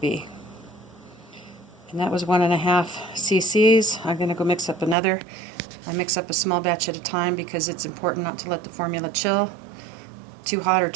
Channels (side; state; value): left; drops out; at 5.0 s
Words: be. And that was 1.5 cc's. I'm going to go mix up another. I mix up a small batch at a time because it's important not to let the formula chill. Too hot or